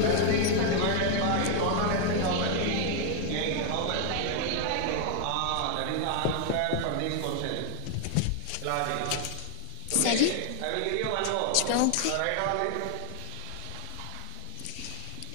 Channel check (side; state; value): both; different; correlation 0.00